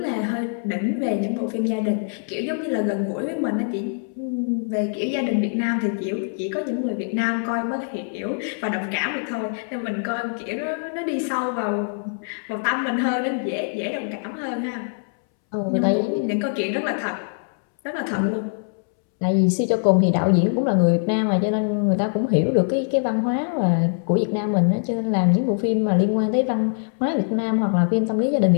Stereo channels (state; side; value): silent; right; 63 dB below the other